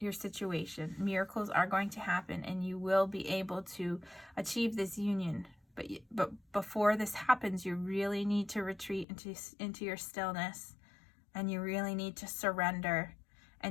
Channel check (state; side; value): drops out; right; at 9.1 s